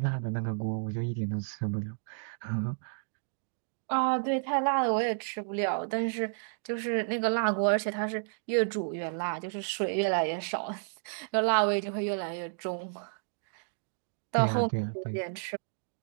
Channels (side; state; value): left; silent; digital silence